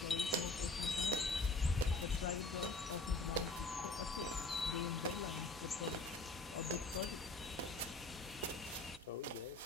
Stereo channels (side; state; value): right; quieter; 3.1 dB